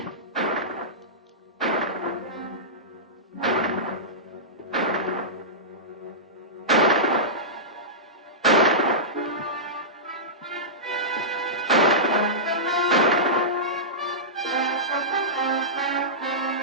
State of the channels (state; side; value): normal; both; correlation -0.16